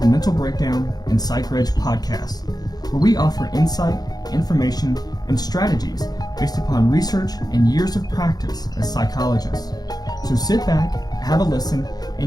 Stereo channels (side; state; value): right; late; 0.19 ms